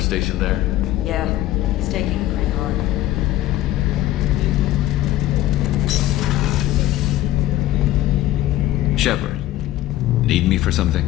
there? Yeah, he's taking it pretty hard. Shepard, need me for something?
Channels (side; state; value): right; quieter; 14.8 dB